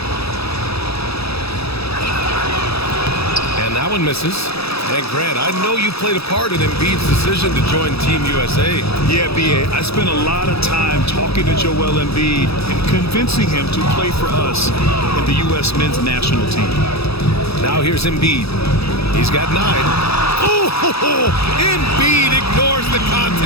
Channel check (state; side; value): late; right; 0.78 ms